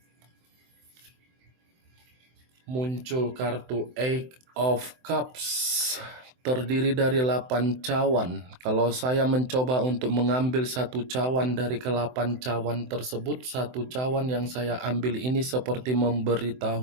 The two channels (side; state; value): left; late; 23 ms